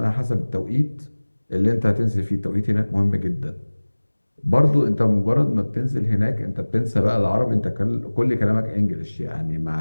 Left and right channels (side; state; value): both; inverted; correlation -1.00